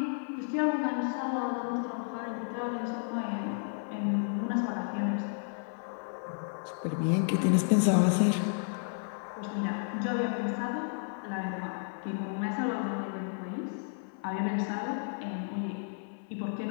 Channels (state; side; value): silent; right; 56 dB below the other